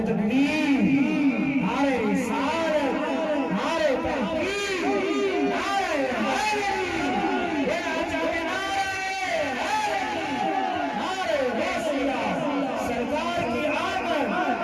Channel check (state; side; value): identical; both; correlation 1.00